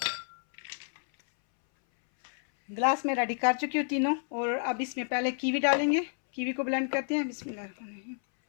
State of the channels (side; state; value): right; silent; 58 dB below the other